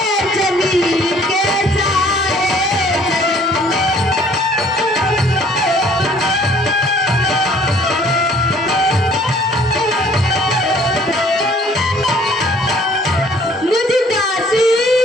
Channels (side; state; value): both; normal; correlation 0.57